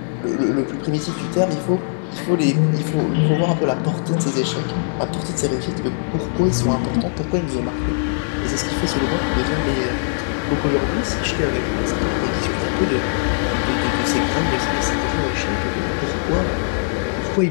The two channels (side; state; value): right; silent; 65 dB below the other